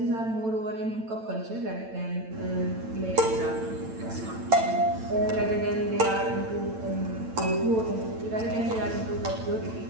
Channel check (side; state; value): left; late; 9.0 ms